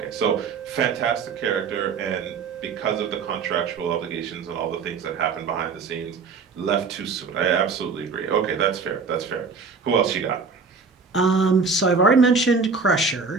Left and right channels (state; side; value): quieter; left; 5.0 dB